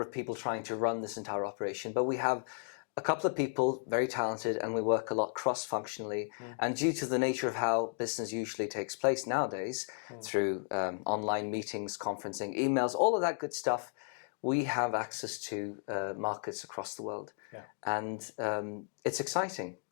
of people trying to run this entire operation, but we have a couple of people, very talented, and we work a lot cross-functionally. And due to the nature of how business usually takes place nowadays, through online meetings, conferencing, emails, all of that good stuff, we have access to markets across the world. Yeah. And it's exciting,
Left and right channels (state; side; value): silent; right; 55 dB below the other